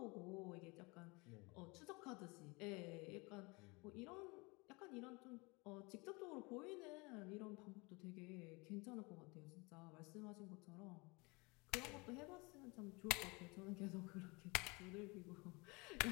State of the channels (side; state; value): right; quieter; 27.0 dB